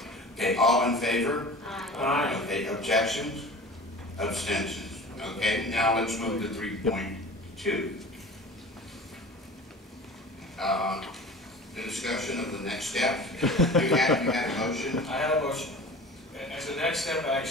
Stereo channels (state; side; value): normal; both; correlation 0.39